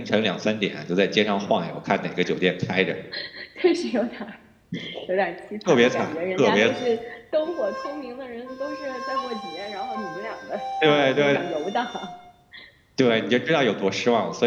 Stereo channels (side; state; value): both; identical; correlation 1.00